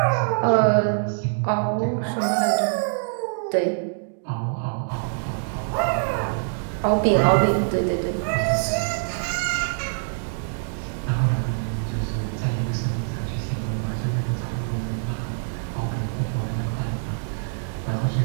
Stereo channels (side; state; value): left; silent; digital silence